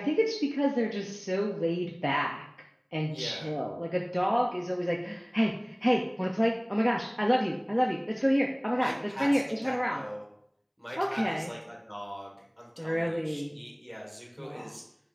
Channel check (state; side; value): identical; both; correlation 1.00